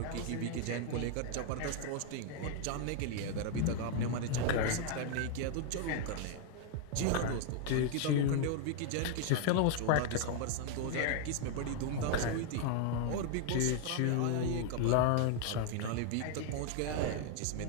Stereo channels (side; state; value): both; different; correlation 0.00